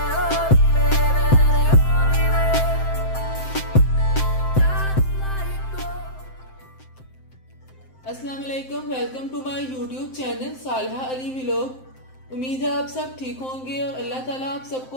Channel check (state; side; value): late; right; 7.7 ms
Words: अस्सलाम वालेकुम, welcome to my YouTube channel Saleha Ali vlog. उम्मीद है आप सब ठीक होंगे और अल्लाह ताला आप